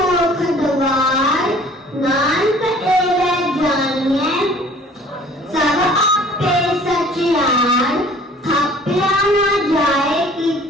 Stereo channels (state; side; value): normal; both; correlation 0.52